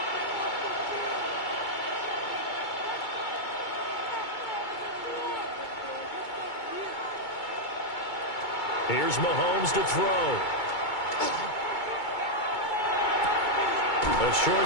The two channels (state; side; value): late; right; 2.2 ms